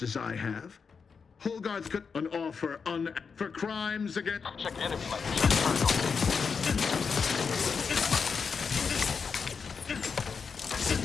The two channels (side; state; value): right; quieter; 5.6 dB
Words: as I have? Hogarth could an offer for crimes against... Check enemy light.